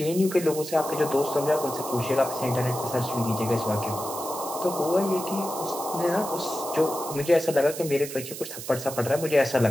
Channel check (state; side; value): noise; right; hiss, 10 dB below the sound